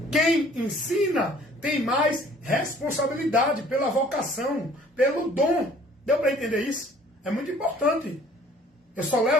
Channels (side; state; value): both; normal; correlation 0.55